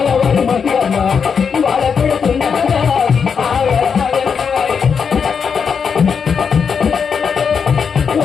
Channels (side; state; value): right; quieter; 6.3 dB